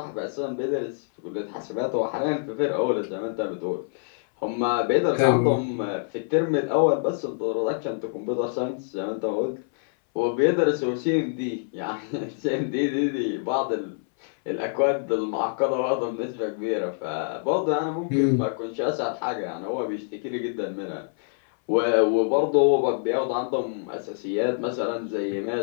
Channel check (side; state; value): right; silent; 61 dB below the other